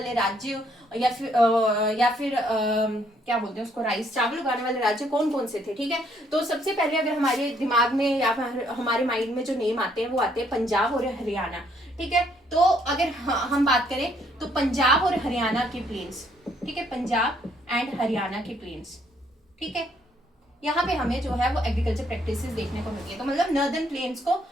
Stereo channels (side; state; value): both; normal; correlation 0.68